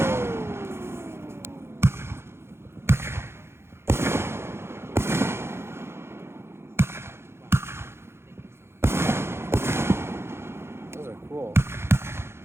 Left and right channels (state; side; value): late; left; 0.12 ms